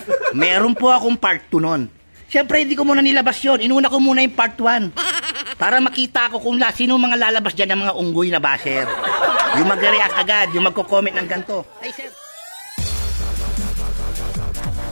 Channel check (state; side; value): inverted; both; correlation -1.00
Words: Meron po akong part 2 nun. Siyempre, hindi ko muna nilabas yun. Inuna ko muna yung part 1. Para makita ko kung sino mga lalabas dyan ng mga unggoy na basher. Yung mag-react agad, yung magko-comment ng ganito. Ay, sir.